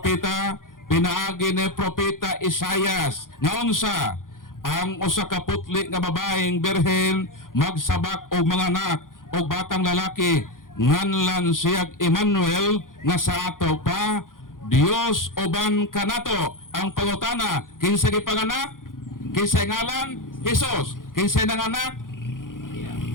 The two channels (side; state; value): right; late; 0.90 ms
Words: pinaagi ni propeta Isaias nga unsa ang usa ka putli nga babaeng birhen magsabak og mga anak og batang lalaki nganlan siyag Emmanuel nga sa ato pa Dios uban kanato. Ang pangutana, kinsa gipanganak? Kinsa ngalan? Jesus. Kinsa nanganak?